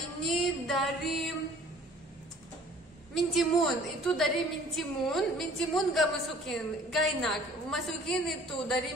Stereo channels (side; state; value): both; normal; correlation 0.52